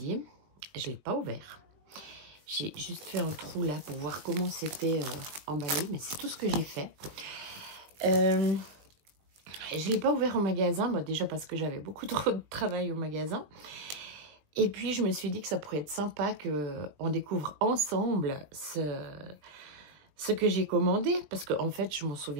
je ne l'ai pas ouvert. J'ai juste fait un trou là pour voir comment c'était emballé, mais c'est tout ce que j'ai fait. Je ne l'ai pas ouvert au magasin, déjà parce que j'avais beaucoup trop de travail au magasin. Et puis je me suis dit que ça pourrait être sympa qu'on découvre ensemble ce que j'ai commandé. Parce qu'en fait, je ne m'en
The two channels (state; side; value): late; left; 20 ms